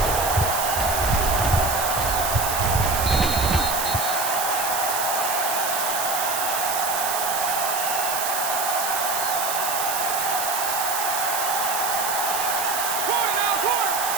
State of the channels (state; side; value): noise; right; hiss, 2 dB below the sound